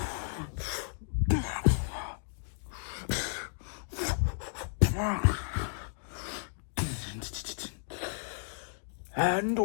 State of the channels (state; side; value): silent; right; digital silence